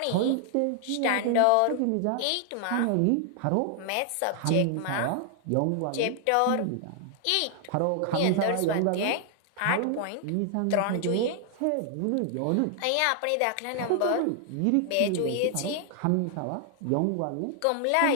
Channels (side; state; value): both; different; correlation 0.00